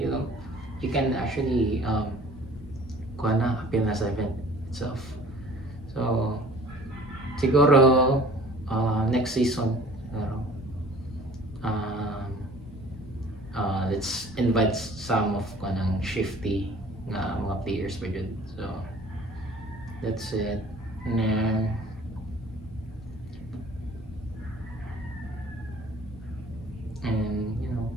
can actually appeal na sa event itself. So siguro next season let's invite some of kanang shifty nga mga players pa dyan. So that's it. And then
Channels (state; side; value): normal; both; correlation 0.49